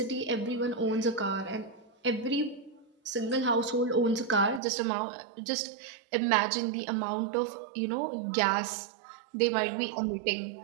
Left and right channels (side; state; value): left; drops out; at 4.6 s